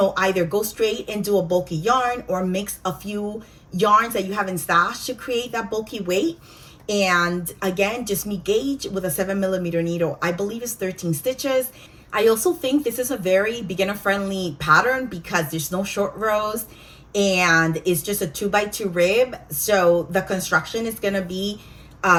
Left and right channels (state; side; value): identical; both; correlation 1.00